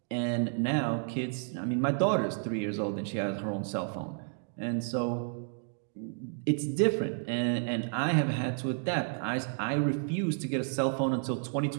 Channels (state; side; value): silent; left; 57 dB below the other